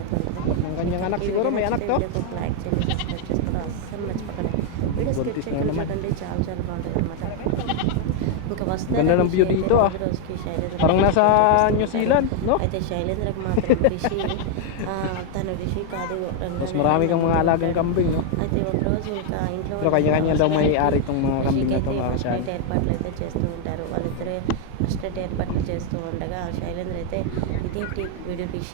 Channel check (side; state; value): both; different; correlation 0.00